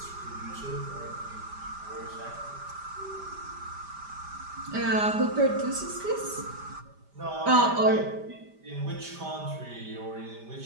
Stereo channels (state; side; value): late; left; 5.0 ms